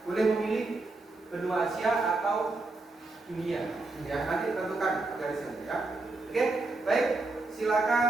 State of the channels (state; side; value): quieter; left; 3.3 dB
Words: Boleh memilih benua Asia atau dunia. Ya, nanti tentukan garisnya ya. Oke, baik.